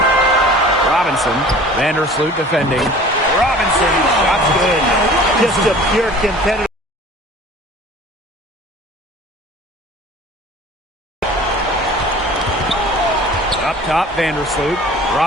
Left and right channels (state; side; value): normal; both; correlation 0.45